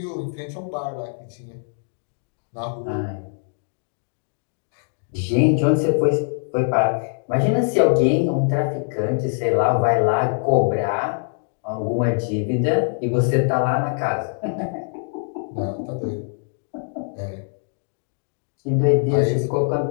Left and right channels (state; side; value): silent; right; digital silence